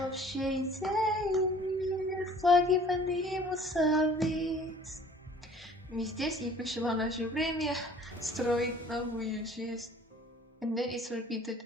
общей идеи, флаги поднимутся ввысь. Мы здесь, и пришло наше время строить новую жизнь. And then it's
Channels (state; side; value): normal; both; correlation 0.51